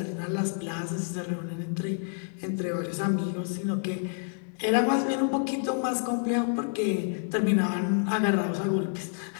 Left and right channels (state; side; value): silent; right; 59 dB below the other